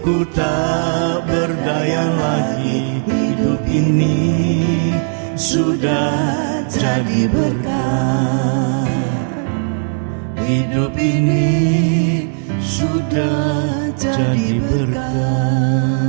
ku tak berdaya lagi, hidup ini sudah jadi berkah. Hidup ini sudah jadi berkah.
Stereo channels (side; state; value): left; silent; 68 dB below the other